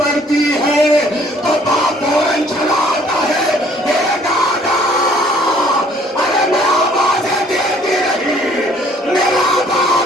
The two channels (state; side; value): normal; both; correlation 0.59